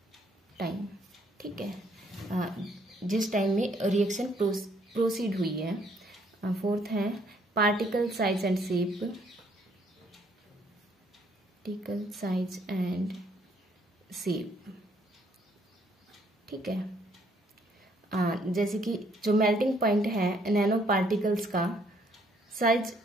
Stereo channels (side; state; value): both; normal; correlation 0.66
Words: ठीक है। जिस time में reaction proceed हुई है। Fourth है particle size and shape, particle size and shape, ठीक है। जैसे कि जो मेल्टिंग पॉइंट है नैनो पार्टिकल्स का साइज